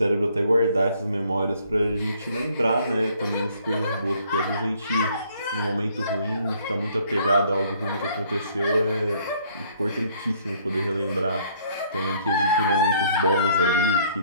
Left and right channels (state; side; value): inverted; both; correlation -0.62